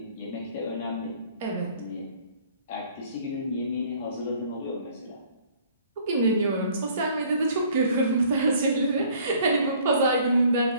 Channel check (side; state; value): both; inverted; correlation -0.57